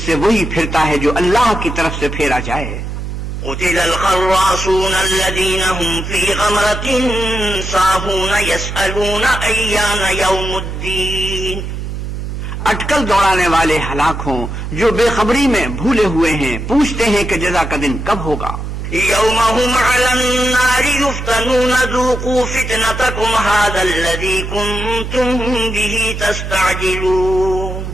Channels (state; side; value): noise; right; hum, 6 dB below the sound